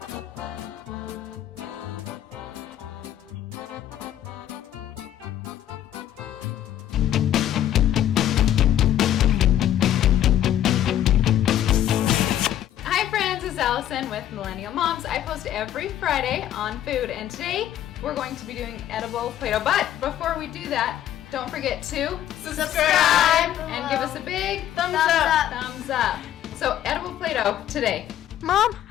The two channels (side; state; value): right; quieter; 11.5 dB